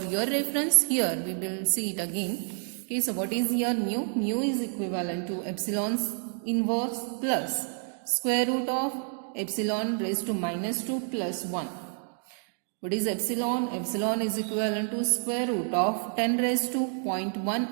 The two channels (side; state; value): left; silent; 57 dB below the other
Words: your reference here we will see it again. Okay, so what is here mu? Mu is equivalent to epsilon's inverse plus square root of epsilon raised to minus 2 plus 1. What is epsilon? Epsilon is equivalent to square root of 10 raised to 0.1